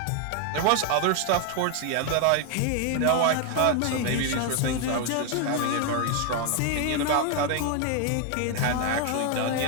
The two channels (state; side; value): different; both; correlation 0.00